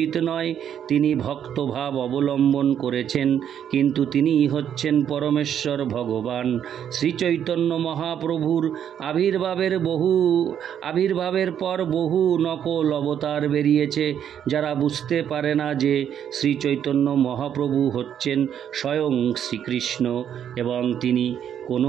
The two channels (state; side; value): quieter; left; 9.2 dB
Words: নয়। তিনি ভক্তভাব অবলম্বন করেছেন, কিন্তু তিনিই হচ্ছেন পরমেশ্বর ভগবান। শ্রী চৈতন্য মহাপ্রভুর আবির্ভাবের পর বহু নকল অবতার বেরিয়েছে। যারা বুঝতে পারে না যে শ্রী চৈতন্য মহাপ্রভু হচ্ছেন স্বয়ং শ্রীকৃষ্ণ এবং তিনি